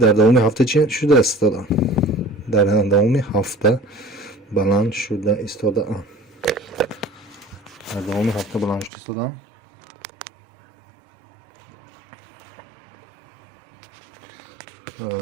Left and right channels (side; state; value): left; drops out; at 8.9 s